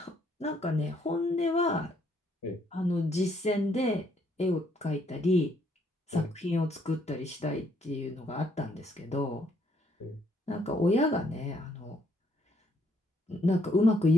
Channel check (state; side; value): normal; both; correlation 0.70